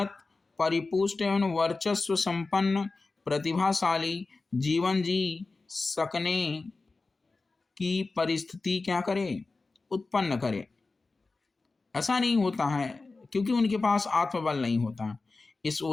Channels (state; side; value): quieter; right; 3.7 dB